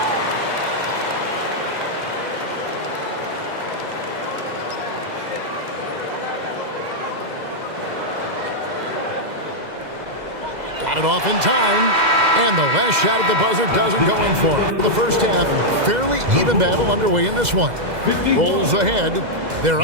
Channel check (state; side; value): late; left; 2.0 ms